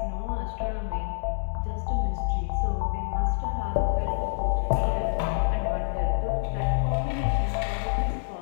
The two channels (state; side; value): silent; right; digital silence